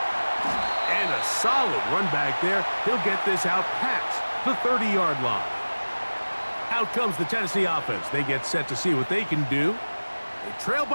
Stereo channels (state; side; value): inverted; both; correlation -1.00